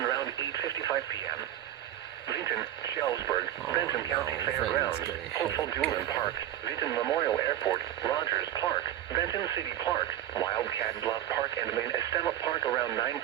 around 8:55 p.m. Vinton, Shellsburg, Benton County no, Fairgrounds, Vinton's getting Hopeful hit. Julian Park, Vinton Memorial Airport, Rogers Park, Benton City Park, Wildcat Bluff Park, and Main Estema Park around 9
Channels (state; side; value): quieter; left; 12.4 dB